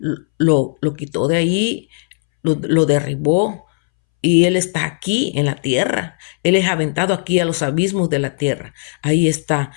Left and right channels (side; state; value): right; silent; 65 dB below the other